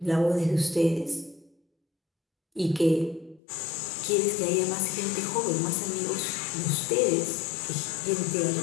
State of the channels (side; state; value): right; drops out; at 3.4 s